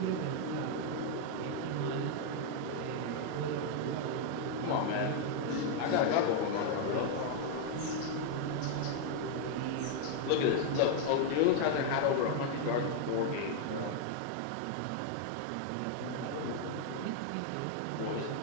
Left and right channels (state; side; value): different; both; correlation 0.00